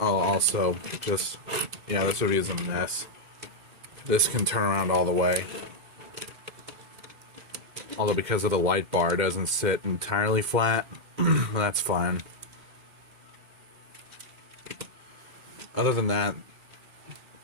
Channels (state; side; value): late; left; 2.1 ms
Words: also just, yeah, this review is a mess. This can turn around all the way. Although because of the light bar, it doesn't sit entirely flat. That's fine. other than that,